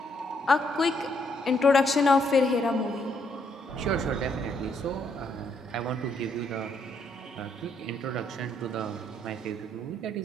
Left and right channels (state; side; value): normal; both; correlation 0.72